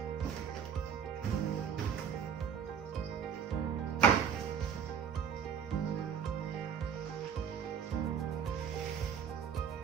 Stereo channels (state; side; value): quieter; left; 7.7 dB